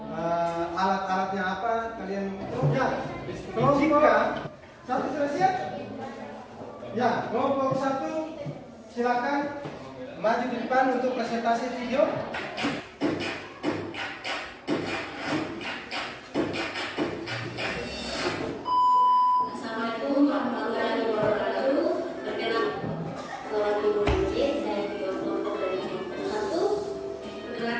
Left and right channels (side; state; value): both; identical; correlation 1.00